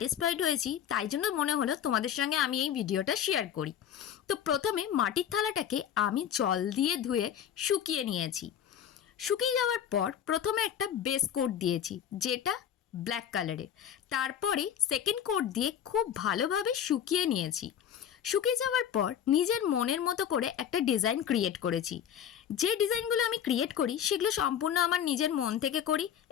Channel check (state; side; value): quieter; right; 9.3 dB